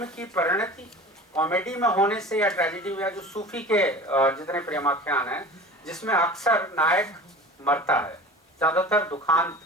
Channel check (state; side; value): normal; both; correlation 0.38